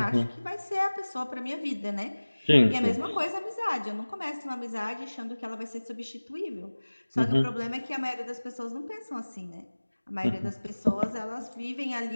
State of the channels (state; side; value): inverted; both; correlation -1.00